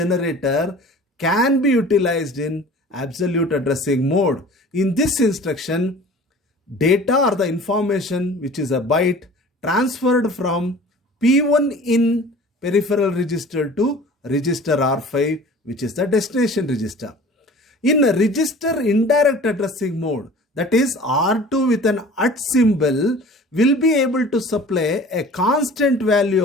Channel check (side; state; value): both; normal; correlation 0.44